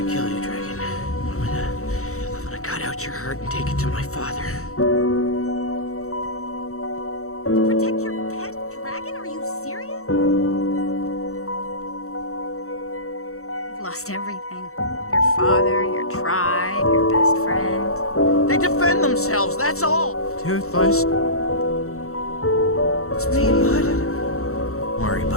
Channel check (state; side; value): late; right; 0.64 ms